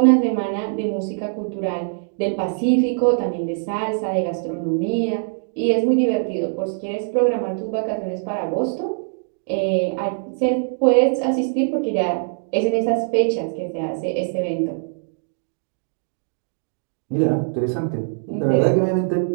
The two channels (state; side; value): silent; left; digital silence